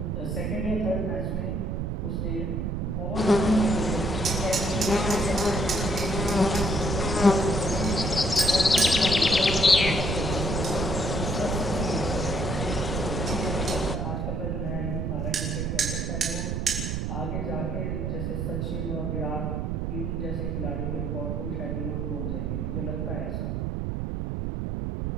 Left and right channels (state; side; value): noise; right; rumble, 1 dB below the sound